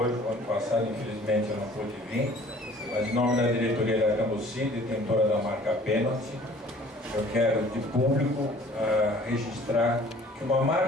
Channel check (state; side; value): normal; both; correlation 0.52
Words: O ano passado, infelizmente, eu não pude vir, mas em nome da diretoria da Cambuci, detentora da marca Pênalti, eu quero de público registrar que uma